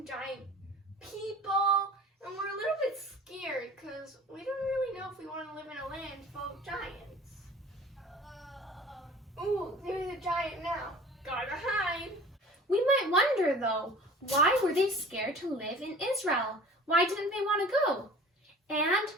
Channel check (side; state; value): both; normal; correlation 0.44